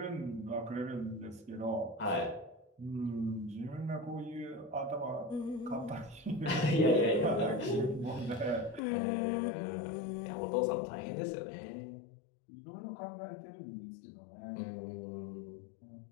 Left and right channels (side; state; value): right; drops out; at 8.8 s